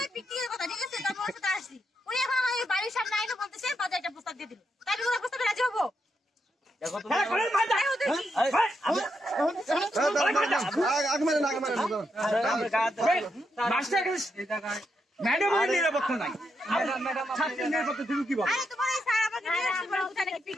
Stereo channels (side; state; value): both; normal; correlation 0.82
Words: পিটিয়ে কথা ঠিক আছে তারপর সাথে আসছি উনি এখন আমার বাড়ির সামনে আইনো বলতেছে বাজার একটা প্রস্তাব দিয়ে দিল তাই আমি কোনো প্রস্তাবে রাজি হবো দেখো তুমি ম্যাডাম নিরাপত্তা নাই ছাত্রীর নিরাপত্তা তুমি কি বলো তোমার এই স্যার আমাকে নিয়ে আসছে বলে কোথায় নাকি